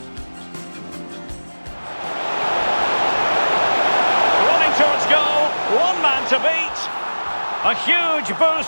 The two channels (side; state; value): both; inverted; correlation -1.00